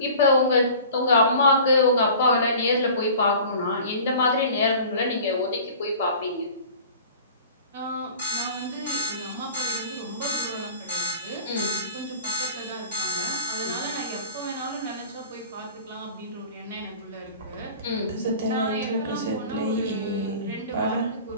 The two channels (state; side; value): inverted; both; correlation -0.42